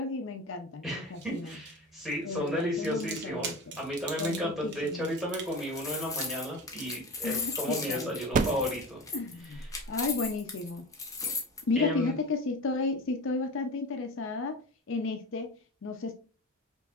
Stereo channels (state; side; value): normal; both; correlation 0.30